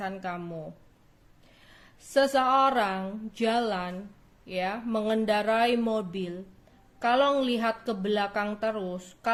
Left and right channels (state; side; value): identical; both; correlation 1.00